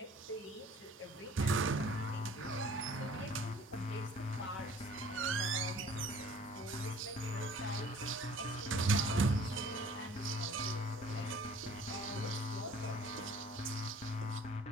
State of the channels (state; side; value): normal; both; correlation 0.52